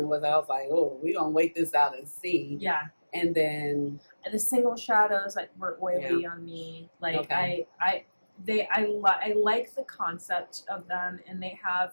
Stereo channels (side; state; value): both; inverted; correlation -1.00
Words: was. I was like, oh, we're gonna wait this out and see. Yeah. And then the single shadows were oily on me. Like I like the concept of them, and they